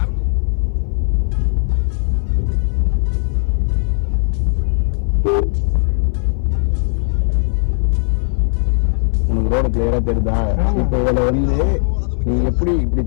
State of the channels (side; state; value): right; silent; 64 dB below the other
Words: உனக்கு ரோடு கிளியரா தெரியுதா? இப்போ இதுல வந்து நீ எப்படி இப்படி